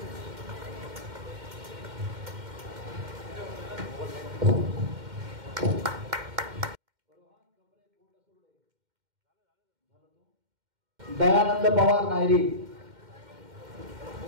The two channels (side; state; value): left; late; 2.1 ms